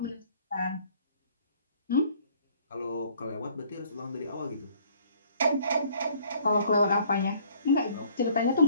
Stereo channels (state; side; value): inverted; both; correlation -0.58